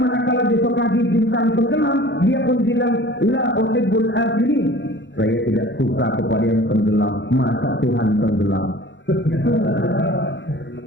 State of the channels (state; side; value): late; right; 0.53 ms